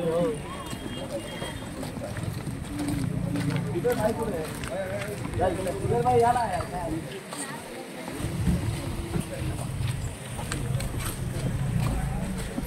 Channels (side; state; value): both; identical; correlation 1.00